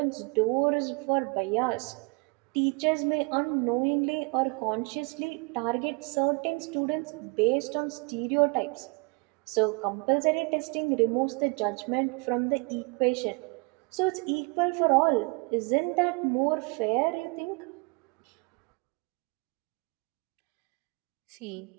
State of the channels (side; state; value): left; quieter; 32.0 dB